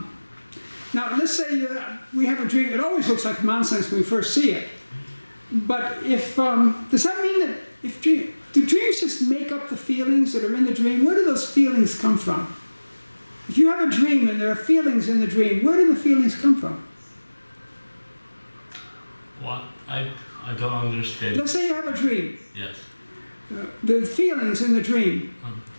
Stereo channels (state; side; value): inverted; both; correlation -1.00